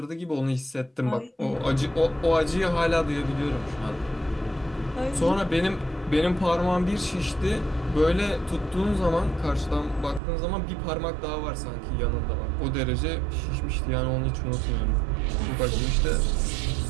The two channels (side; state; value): left; drops out; at 10.2 s